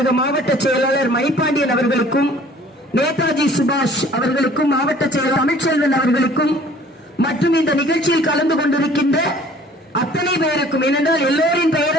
மாவட்ட செயலாளர் மணிப்பாண்டியன் அவர்களுக்கும், நேதாஜி சுபாஷ் அவர்களுக்கும், மாவட்ட செயலாளர் தமிழ்ச்செல்வன் அவர்களுக்கும், மற்றும் இந்த நிகழ்ச்சியில் கலந்து கொண்டிருக்கின்ற அத்தனை பேருக்கும், ஏனென்றால் எல்லோரின்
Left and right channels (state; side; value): normal; both; correlation 0.53